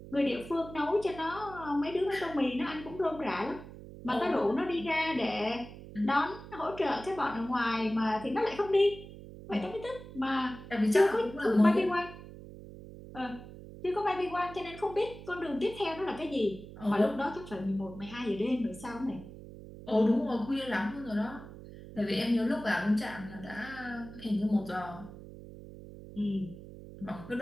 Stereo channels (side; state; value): right; noise; hum, 15 dB below the sound